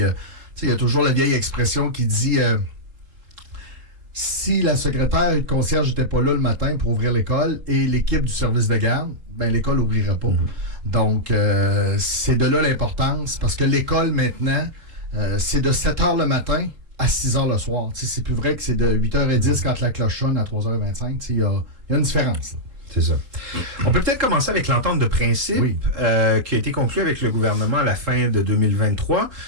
il y a toujours la vieille expression qui dit si la secrétaire et le concierge n'étaient pas là le matin pour ouvrir l'école et l'équipe du service de garde, ben l'école n'ouvrirait pas. Donc, c'est de là l'importance, parce que l'école, maintenant, c'est de 7h le matin à 6h le soir. T'sais, c'est plus vrai que c'est de 8h10 quand la cloche sonne à 3h25. Il y a une différence. Là. C'est ça. On peut peut-être commencer avec l'entente de principe qui a été conclue avec le gouvernement à la fin de 2023.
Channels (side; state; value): left; late; 3.9 ms